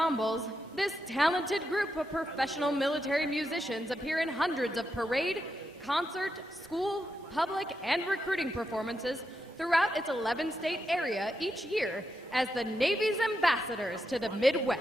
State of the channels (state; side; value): normal; both; correlation 0.85